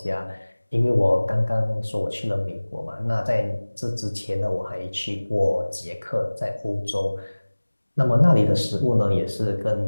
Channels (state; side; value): inverted; both; correlation -1.00